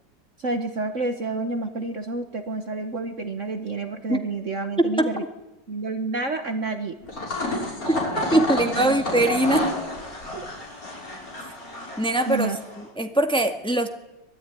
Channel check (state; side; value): normal; both; correlation 0.38